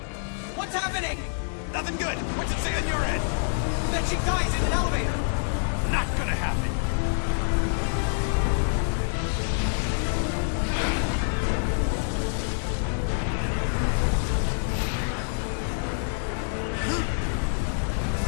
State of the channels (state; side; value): silent; right; digital silence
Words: What's happening? Nothing good. What's it say on your end? That she dies in an elevator. Not gonna happen.